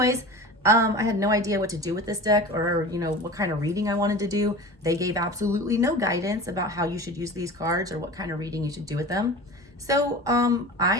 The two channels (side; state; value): both; normal; correlation 0.35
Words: I had no idea what to do with this deck or, you know, what kind of reading I wanted to do. They gave absolutely no guidance about how you should use these cards or what kind of reading you should do with them. So